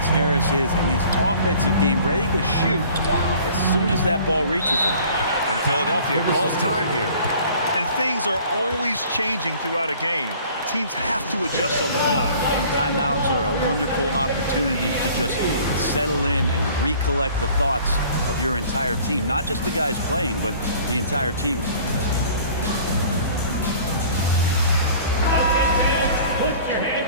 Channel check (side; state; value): both; inverted; correlation -0.50